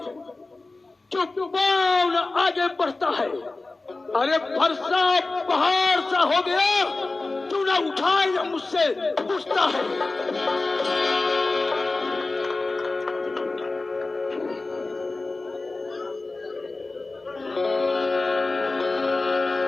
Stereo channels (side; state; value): right; quieter; 3.4 dB